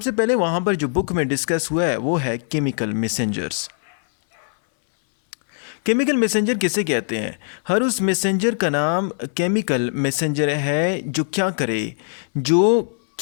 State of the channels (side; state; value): right; silent; 61 dB below the other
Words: पहले वहाँ पर जो बुक में डिस्कस हुआ है वो है केमिकल मैसेंजर्स। केमिकल मैसेंजर किसे कहते हैं? हर उस मैसेंजर का नाम केमिकल मैसेंजर है जो क्या करे, जो